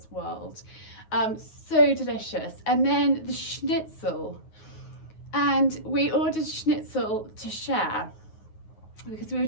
world. So delicious. And then the schnitzel. And we ordered schnitzel to share because we were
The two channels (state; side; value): late; right; 9.4 ms